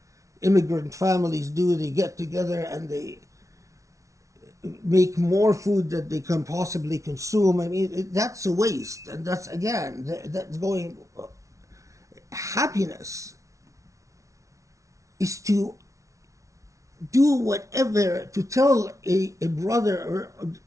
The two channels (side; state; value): left; late; 0.15 ms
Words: immigrant families do. They get together and they make more food that they can possibly consume. I mean, that's a waste. And that's, again, that's going... Happiness is to do whatever, to tell a brother,